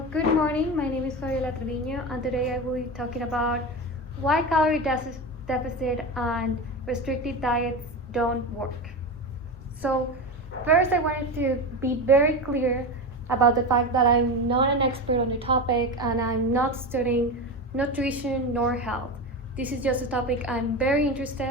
good morning. My name is Fabiola Trevino, and today I will be talking about why deficit and restrictive diets don't work. So, first, I wanted to be very clear about the fact that I'm not an expert on the topic and I'm not studying nutrition nor health. This is just a topic I'm very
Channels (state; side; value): normal; both; correlation 0.21